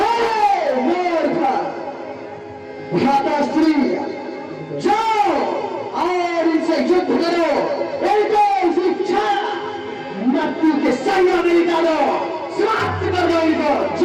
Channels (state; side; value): identical; both; correlation 1.00